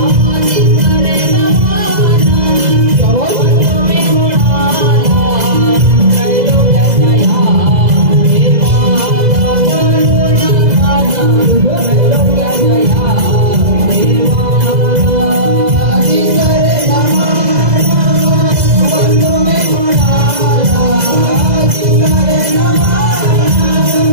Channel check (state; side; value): late; left; 2.0 ms